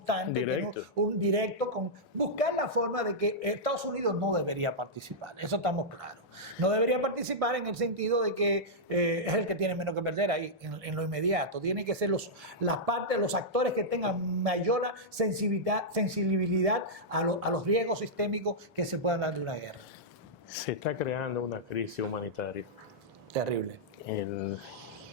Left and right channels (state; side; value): normal; both; correlation -0.09